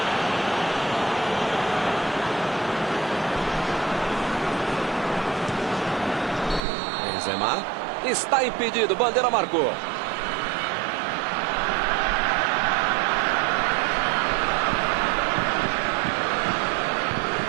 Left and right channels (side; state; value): left; drops out; at 6.6 s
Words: Benzema está impedido, bandeira marcou.